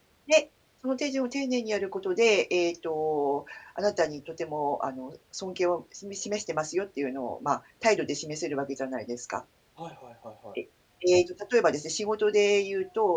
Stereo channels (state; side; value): identical; both; correlation 1.00